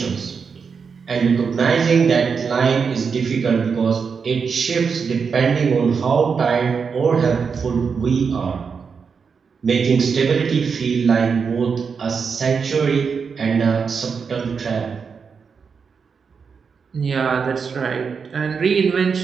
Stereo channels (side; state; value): left; quieter; 5.8 dB